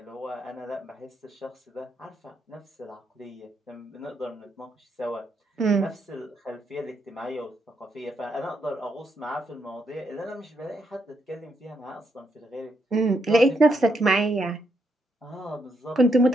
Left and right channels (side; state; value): both; normal; correlation 0.78